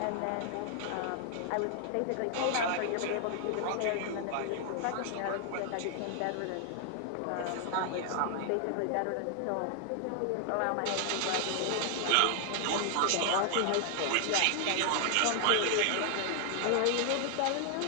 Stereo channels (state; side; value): different; both; correlation 0.00